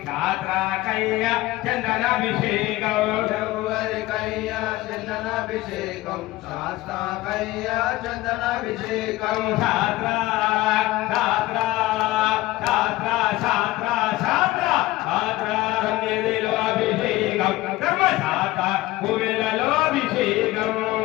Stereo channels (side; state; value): right; quieter; 18.1 dB